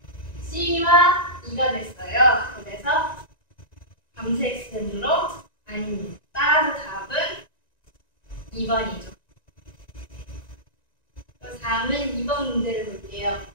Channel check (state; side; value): late; right; 1.9 ms